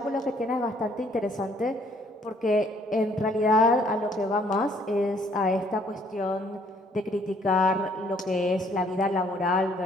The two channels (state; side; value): normal; both; correlation 0.63